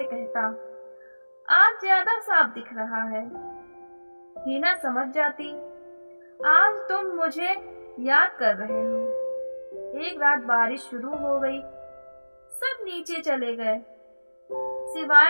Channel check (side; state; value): both; inverted; correlation -1.00